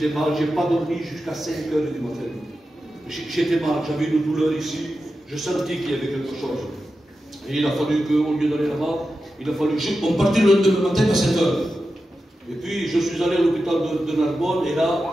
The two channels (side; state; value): both; normal; correlation 0.91